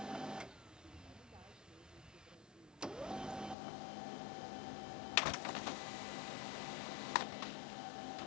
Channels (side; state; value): right; drops out; at 3.6 s